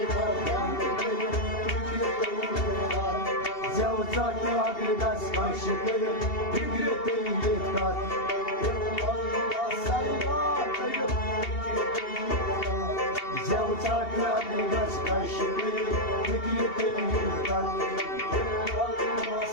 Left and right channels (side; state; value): right; late; 2.7 ms